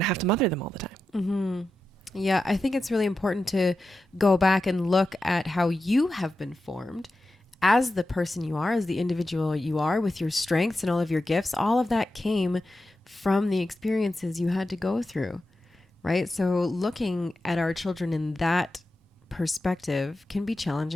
to have to mother them all the time. Mm-hmm. Yeah, I think it's really important to go back and look at how you have been formed as the person you are, as the individual you are, with your strengths and all of your gifts. All of that came from the experiences you had to go through, right? So looking at our children in that perspective can be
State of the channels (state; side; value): normal; both; correlation 0.91